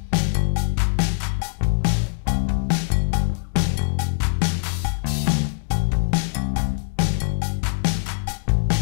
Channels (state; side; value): silent; right; digital silence